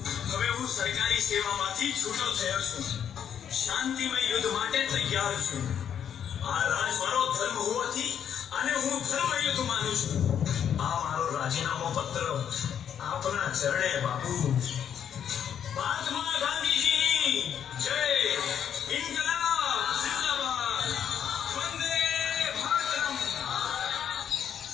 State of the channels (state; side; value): quieter; right; 8.8 dB